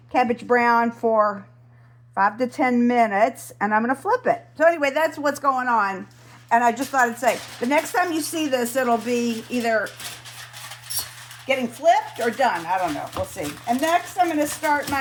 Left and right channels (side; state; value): both; identical; correlation 1.00